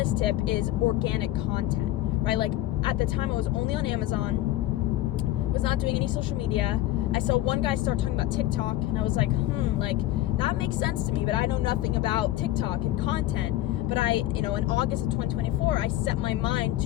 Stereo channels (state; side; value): quieter; right; 14.9 dB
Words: tip is organic content, right? Like, at the time I was only on Amazon, was not doing any social media. I saw one guy start talking about TikTok, and I was like, like, that makes sense to me, but I know nothing about TikTok and content. But in August of 2024, I set my mind